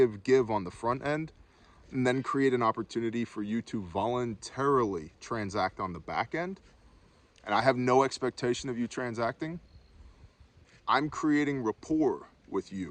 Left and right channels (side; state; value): both; identical; correlation 1.00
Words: on the front end, and then create an opportunity for you to voluntarily transact on the back end. And I have no expectation of you transacting. I'm creating rapport with